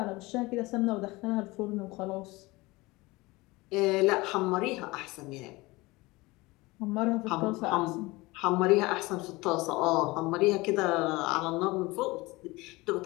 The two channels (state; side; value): quieter; right; 22.1 dB